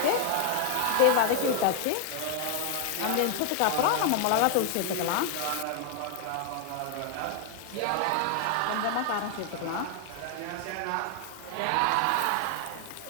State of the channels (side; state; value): both; different; correlation 0.00